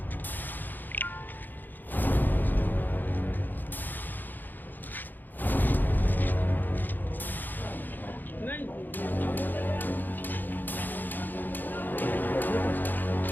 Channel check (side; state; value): right; late; 0.088 ms